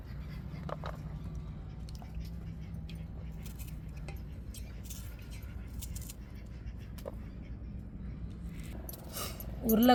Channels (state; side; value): identical; both; correlation 1.00